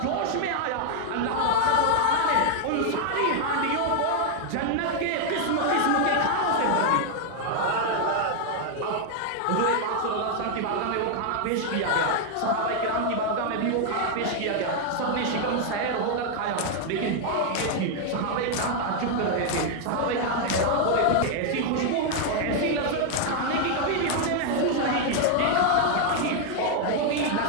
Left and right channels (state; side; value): different; both; correlation 0.00